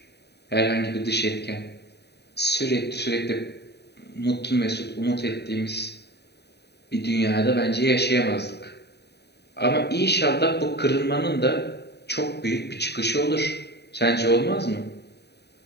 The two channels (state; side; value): late; right; 0.48 ms